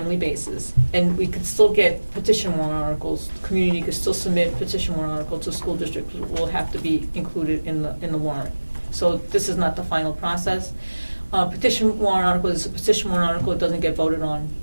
basis. And we could still get petition warrant articles. The community could still submit petition warrant articles to school districts, which will have to be included in the warrant. So this is not the final process. Petition warrant article is a petition warrant article. It doesn't get voted on.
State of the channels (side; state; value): both; inverted; correlation -1.00